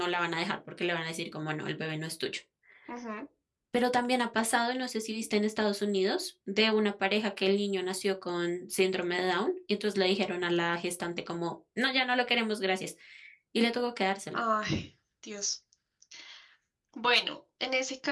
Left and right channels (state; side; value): identical; both; correlation 1.00